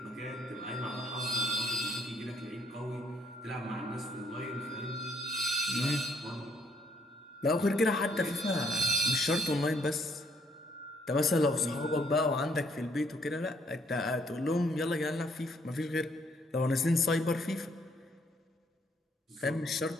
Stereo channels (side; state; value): both; normal; correlation 0.67